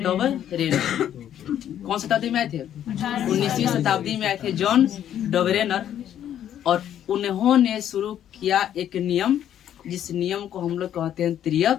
कौन शताब्दी में आए थे? 19वीं शताब्दी में आए थे जॉन डबरेनर, और उन्होंने शुरू किया एक नियम, जिस नियम को हम लोग कहते हैं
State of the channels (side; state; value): right; quieter; 10.5 dB